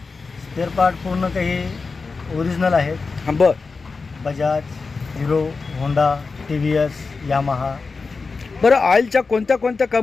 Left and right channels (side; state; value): right; quieter; 4.4 dB